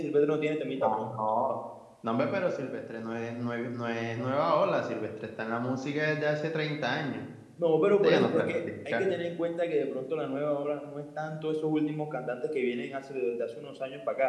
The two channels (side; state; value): both; identical; correlation 1.00